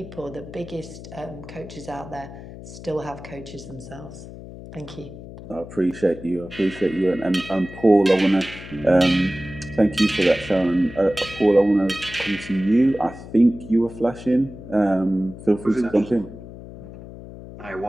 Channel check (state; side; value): noise; left; hum, 14 dB below the sound